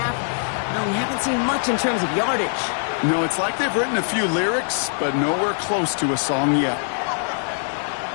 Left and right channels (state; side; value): silent; right; digital silence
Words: well, we haven't seen much in terms of yardage. No, it's like they've written a few lyrics, but nowhere close to a song yet.